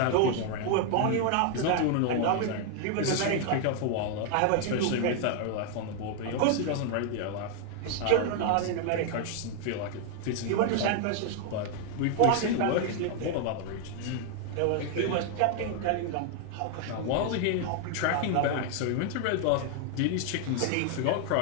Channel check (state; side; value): different; both; correlation 0.00